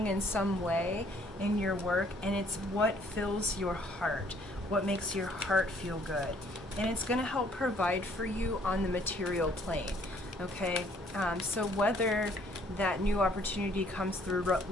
in some way in your work, and it's what fills your heart, what makes your heart feel good. and it's going to help provide for you on the material plane. Okay, so whether that new opportunity comes through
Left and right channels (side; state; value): both; normal; correlation 0.62